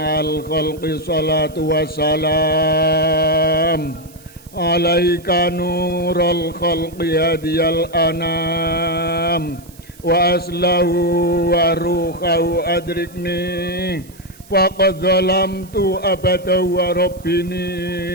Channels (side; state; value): right; noise; hiss, 24 dB below the sound